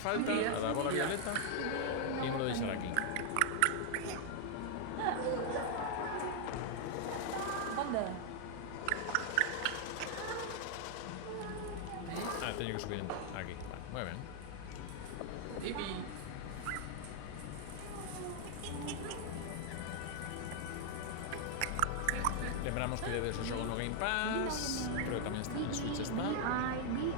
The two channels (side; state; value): both; different; correlation 0.00